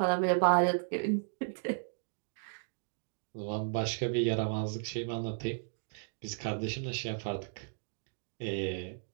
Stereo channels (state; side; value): silent; left; digital silence